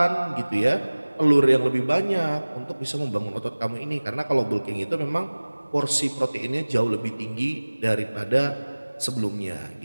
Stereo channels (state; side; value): inverted; both; correlation -1.00